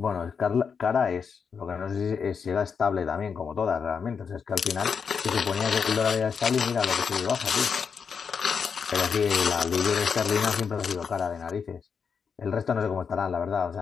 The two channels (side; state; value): right; quieter; 6.3 dB